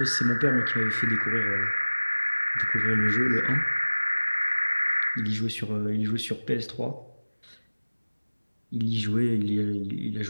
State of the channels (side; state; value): both; inverted; correlation -1.00